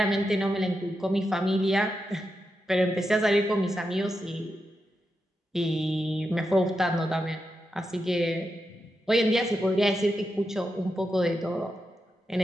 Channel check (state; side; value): normal; both; correlation 0.87